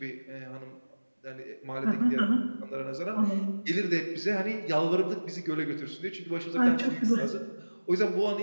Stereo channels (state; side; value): inverted; both; correlation -1.00